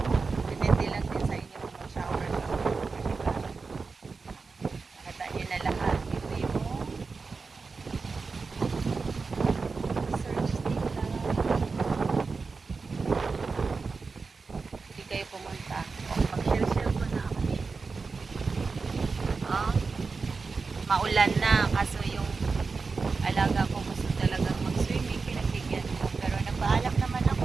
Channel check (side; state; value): left; quieter; 4.5 dB